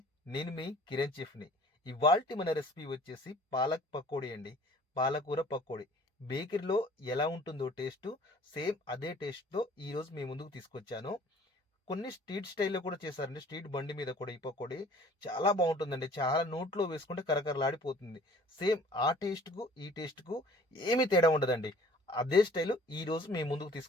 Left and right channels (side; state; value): both; normal; correlation 0.51